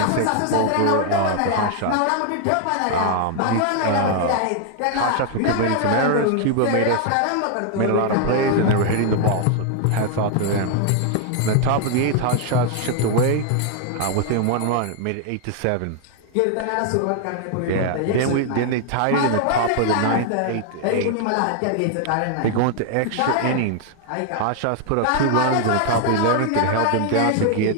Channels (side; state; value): both; different; correlation 0.00